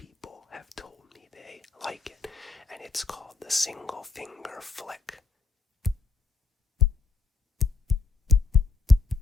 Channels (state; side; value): quieter; right; 4.3 dB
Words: have told me they like it. And it's called the single finger flick.